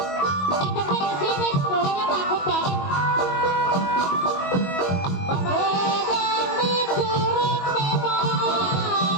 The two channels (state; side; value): late; right; 22 ms